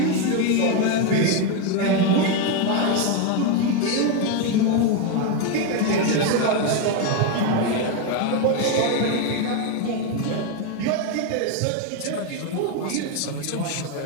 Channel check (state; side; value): different; both; correlation 0.02